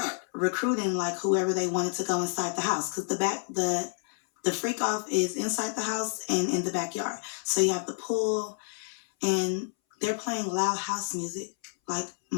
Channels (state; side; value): silent; right; 59 dB below the other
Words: recruiting like whoever they wanted to go inside the house, because the freak off is inside the house and in the backyard. So you have the pool, and they're playing loud house music. Like,